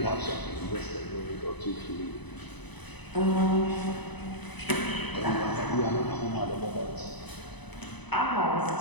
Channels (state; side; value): late; right; 0.99 ms